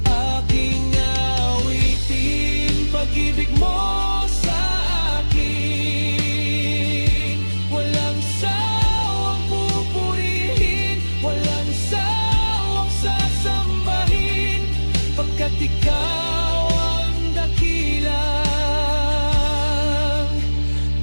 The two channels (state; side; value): inverted; both; correlation -1.00